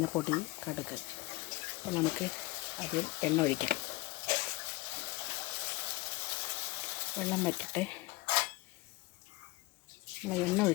കടുക്. അപ്പോൾ നമുക്ക് അതിൽ എണ്ണ ഒഴിക്കാം. വെള്ളം വറ്റട്ടെ. നമ്മൾ എണ്ണ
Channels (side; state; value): right; quieter; 21.2 dB